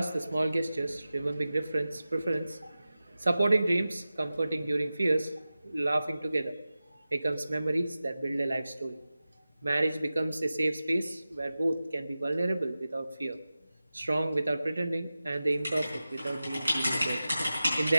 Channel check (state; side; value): inverted; both; correlation -0.94